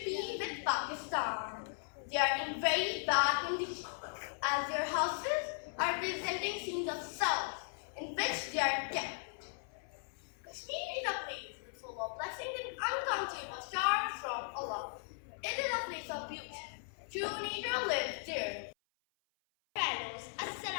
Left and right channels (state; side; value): silent; right; 53 dB below the other